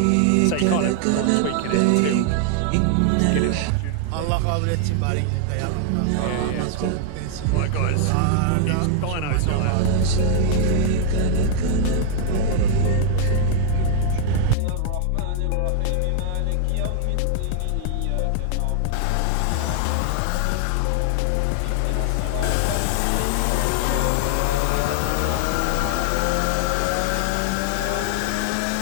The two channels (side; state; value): both; different; correlation 0.00